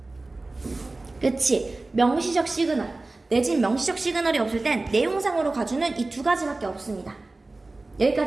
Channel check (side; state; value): left; quieter; 3.1 dB